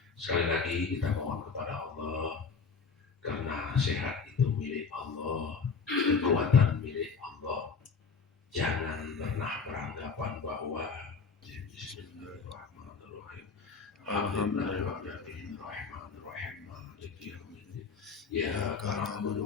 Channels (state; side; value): quieter; right; 5.1 dB